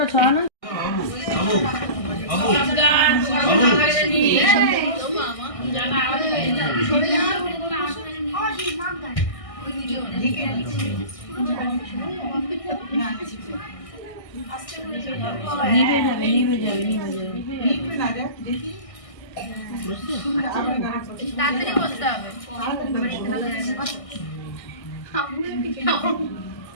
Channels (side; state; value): right; late; 1.6 ms